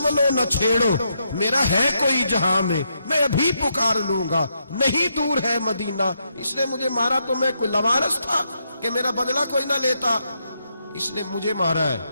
نہ چھیڑو، میرا ہے کوئی جہاں میں ابھی پکار لوں گا، نہیں دور ہے مدینہ. اس نے مجھے مارا تو میں کوئی لاوارث تھا کہ میرا بدلہ کوئی نہ لیتا. اس نے مجھے مارا ہے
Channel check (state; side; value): inverted; both; correlation -0.79